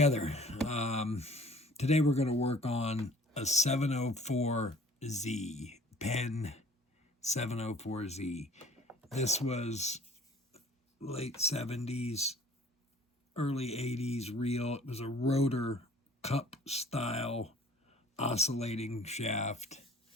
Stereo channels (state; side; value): normal; both; correlation 0.52